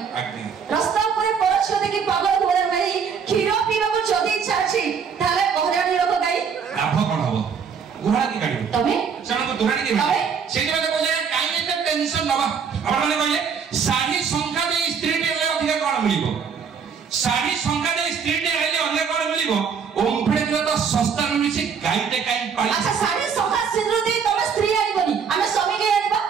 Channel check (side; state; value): left; quieter; 6.5 dB